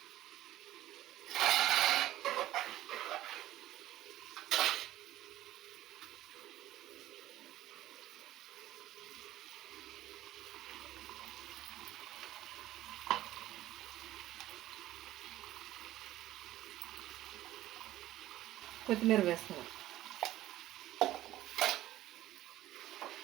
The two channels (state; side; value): quieter; left; 14.5 dB